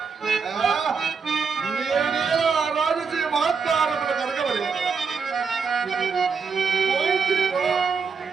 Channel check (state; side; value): quieter; left; 5.5 dB